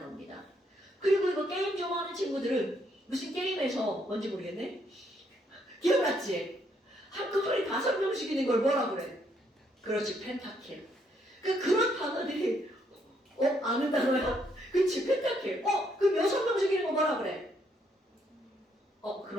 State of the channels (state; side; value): normal; both; correlation 0.72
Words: 그리고 이거 게임 좋아하는 친구들은 무슨 게임에서 뭔지 모르겠네. 기억났지? 한꺼번에 5명씩 있는 걸 뭐라 그래? 그렇지, 펜타킬. 그런 단어들이 아는 단어야? 그치, 펜타킬. 그럼 6명씩 있는 거 뭐라 그래?